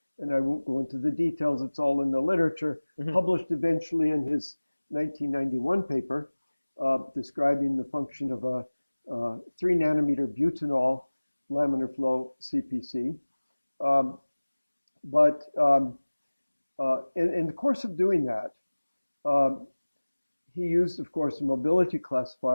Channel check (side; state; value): both; inverted; correlation -1.00